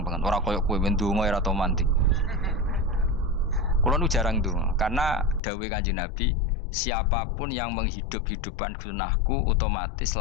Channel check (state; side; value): drops out; right; at 5.4 s